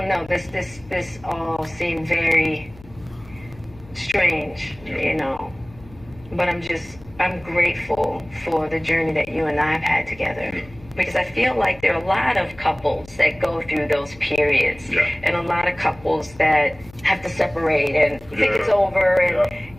know, this all seemed very strange, but I'm grateful for the journey that you and I have had together. Because I feel like there are a lot of couples that go through those periods, and a lot of couples that have to separate and think it's over.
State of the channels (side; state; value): left; noise; hum, 22 dB below the sound